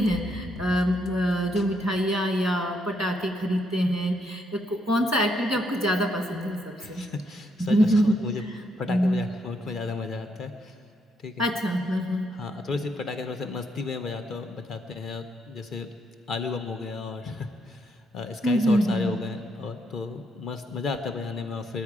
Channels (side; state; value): both; normal; correlation 0.75